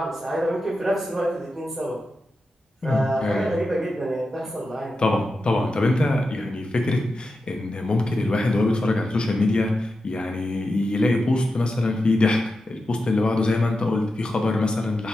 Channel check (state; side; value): normal; both; correlation 0.90